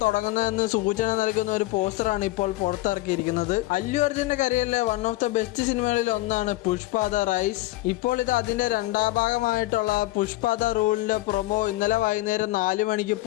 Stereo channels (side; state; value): right; quieter; 18.7 dB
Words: തുടങ്ങുന്നതെന്ന് സൂചന നൽകുന്ന ഒരു പോസ്റ്ററാണ് ഇപ്പോൾ പുറത്തിറക്കിയിരിക്കുന്നത്. അല്ലു അർജുന്റെ കരിയറിലെ വൺ ഓഫ് ദ ബെസ്റ്റ് സിനിമകളിൽ ഒന്നാണ് പുഷ്പ ദ റൈസ്. ഇപ്പോൾ ഇത് അതിന്റെ രണ്ടാം ഭാഗമായിട്ടുള്ള പുഷ്പ ദ റൂളിന്റെ പ്രൊമോ ഇന്നലെ വൈകുന്നേരം 4 മണിക്ക്